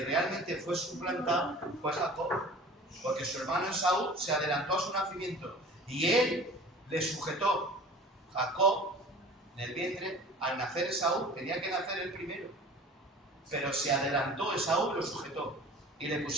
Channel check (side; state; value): both; normal; correlation 0.43